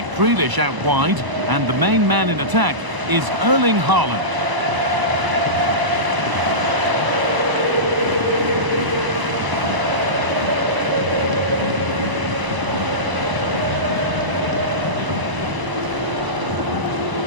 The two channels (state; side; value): late; left; 1.0 ms